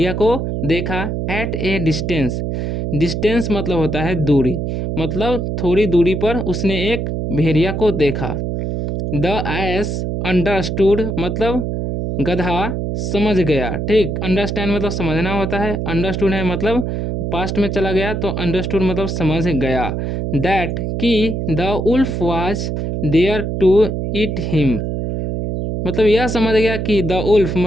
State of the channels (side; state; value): right; noise; hum, 2 dB below the sound